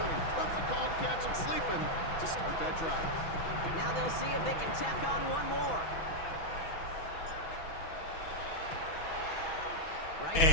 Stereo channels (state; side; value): late; right; 6.1 ms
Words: Perfect call to catch him sleeping to start that drive. Now they'll see if they can tack on one more. Right